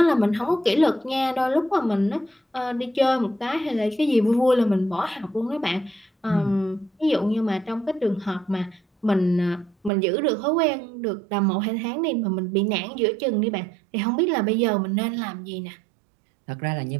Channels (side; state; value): left; drops out; at 9.9 s